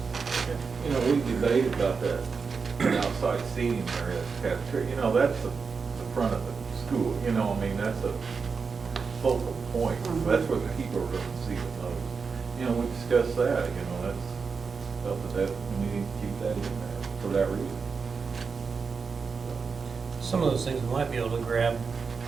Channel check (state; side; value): quieter; left; 5.2 dB